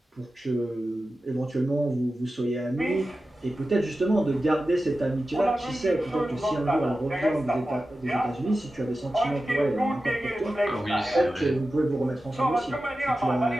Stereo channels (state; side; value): normal; both; correlation 0.93